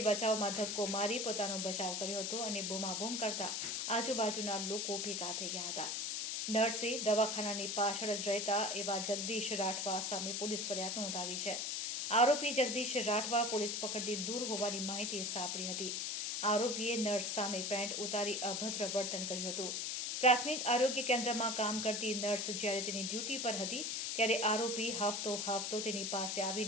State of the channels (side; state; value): left; noise; hiss, 1 dB below the sound